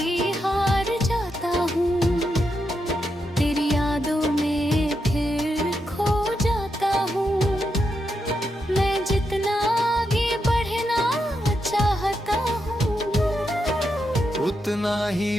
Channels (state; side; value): normal; both; correlation 0.84